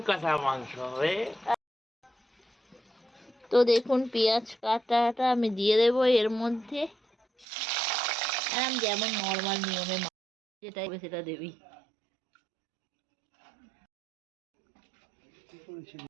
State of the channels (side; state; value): left; drops out; at 7.5 s